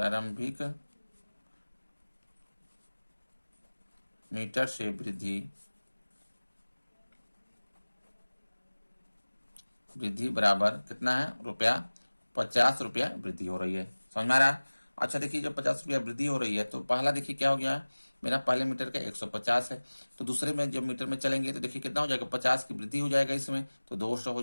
मीटर से वृद्धि बराबर कितना है, रुपया 50 रुपया वृद्धि हो रही है। समझ में आ रहा है? अच्छा देखिए जब 50 रुपया वृद्धि हो रही है तो पहला देखिए क्या हो गया, मेरा पहले मीटर का 150 है, तो दूसरे में जब मीटर में चलेंगे तो देखिए कितना हो जाएगा, 50 की वृद्धि हो जाएगा, इसमें तो 200 हो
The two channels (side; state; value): both; inverted; correlation -1.00